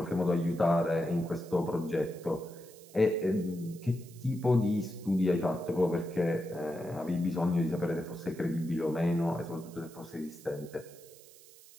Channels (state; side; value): noise; right; hiss, 22 dB below the sound